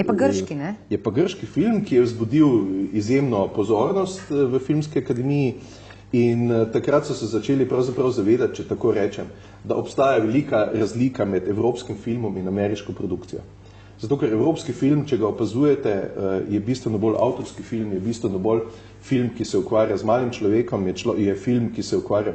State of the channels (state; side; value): identical; both; correlation 1.00